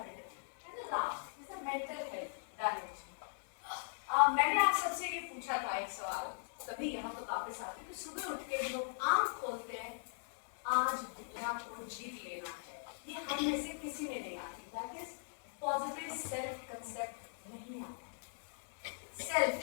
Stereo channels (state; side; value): silent; right; digital silence